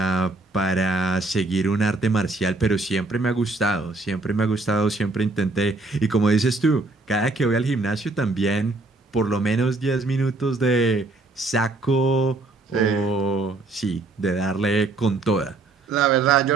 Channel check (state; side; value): quieter; left; 3.2 dB